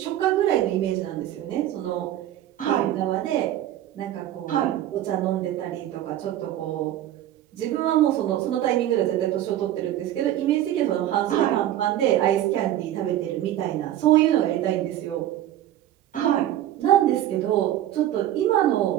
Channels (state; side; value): quieter; left; 12.6 dB